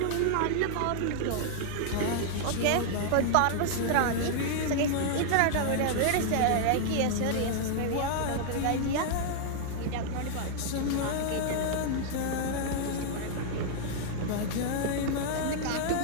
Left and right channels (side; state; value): both; different; correlation -0.01